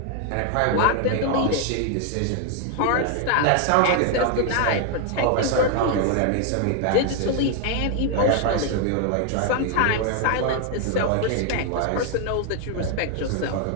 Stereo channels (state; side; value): different; both; correlation 0.01